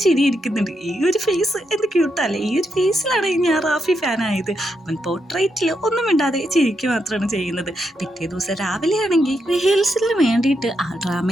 ചിരി ഇരിക്കുന്നുണ്ട്. ഈ ഒരു ഫേസ് എന്ത് ക്യൂട്ടല്ലേ, ഈ ഒരു ഫേസിലാണ് ഞാൻ റാഫി ഫാനായത്. അവൻ പോർട്രേറ്റിൽ ഒന്നും മിണ്ടാതെ ചിരിക്കുക മാത്രമാണ് ചെയ്യുന്നത്. പിറ്റേ ദിവസം രാവിലെ ആണെങ്കിൽ റിഹേഴ്സലിന് വേണ്ടിയിട്ട് ആ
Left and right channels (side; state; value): both; normal; correlation 0.82